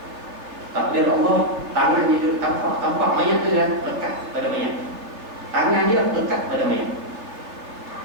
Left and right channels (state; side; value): late; left; 3.2 ms